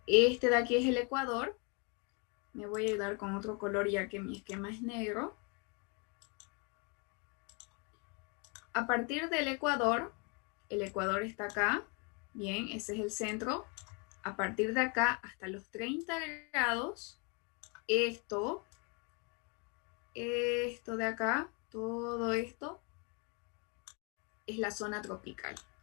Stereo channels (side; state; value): right; quieter; 33.7 dB